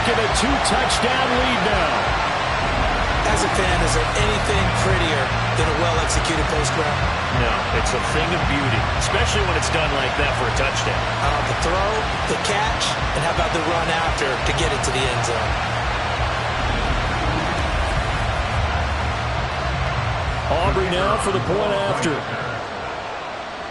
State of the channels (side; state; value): both; identical; correlation 1.00